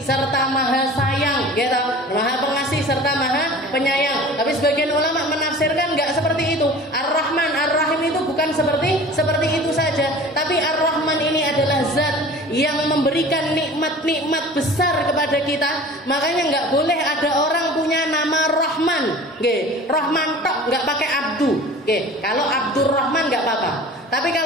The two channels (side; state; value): both; normal; correlation 0.41